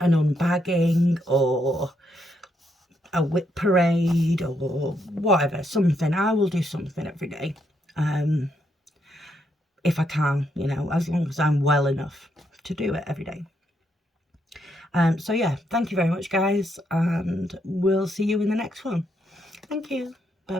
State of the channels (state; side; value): normal; both; correlation 0.77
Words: unbagging or a whip parade or whatever, something. I will do something every day, if I can, you know, as long as I'm well enough to do it every day. So yeah, thank you very much, guys, and we'll see you in the next one. Thank you. Bye